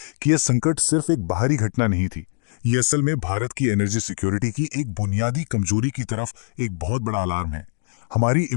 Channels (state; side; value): silent; right; 64 dB below the other